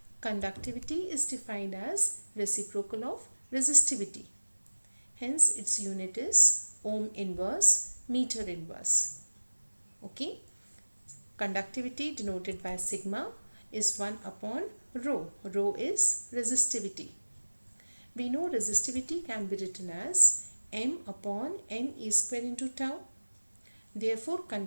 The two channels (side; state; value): both; inverted; correlation -1.00